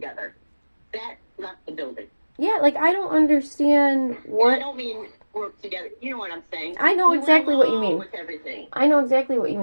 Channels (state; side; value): inverted; both; correlation -1.00